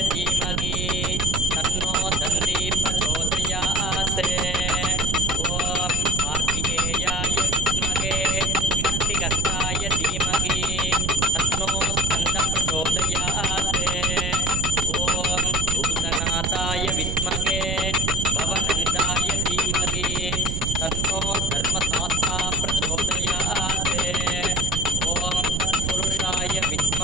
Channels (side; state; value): right; noise; rumble, 2 dB below the sound